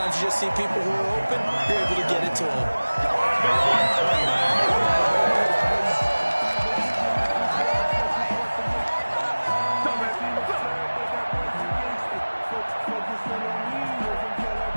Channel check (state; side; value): inverted; both; correlation -1.00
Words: you just see people who are open, you're able to get it to them.